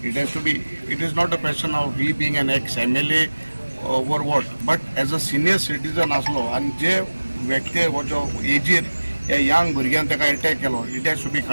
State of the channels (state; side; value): inverted; both; correlation -1.00